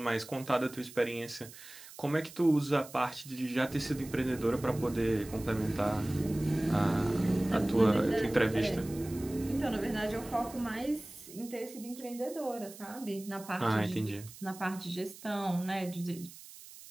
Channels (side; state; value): right; noise; hiss, 17 dB below the sound